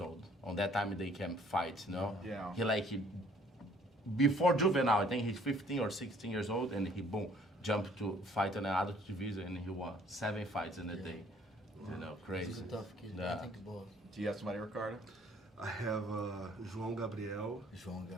old. On that time they can fight, you know. Yeah. Before juvenile, I think he's 15 or 16 years old, and he jumped to fight in an adult division, and he won 7 fights in a day. You know, crazy. He's a tough kid. Yeah. I think both. Do you have somebody, Ricardo? I have João Gabriel João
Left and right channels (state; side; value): normal; both; correlation 0.59